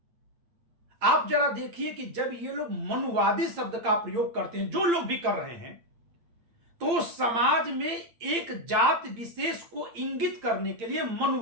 आप जरा देखिए कि जब ये लोग मनुवादी शब्द का प्रयोग करते हैं, जो लोग भी कर रहे हैं, तो समाज में एक जात विशेष को इंगित करने के लिए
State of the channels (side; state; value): left; late; 8.8 ms